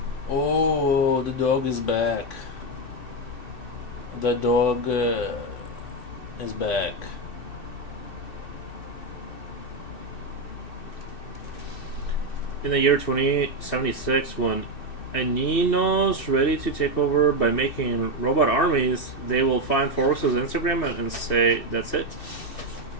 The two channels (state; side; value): late; right; 2.7 ms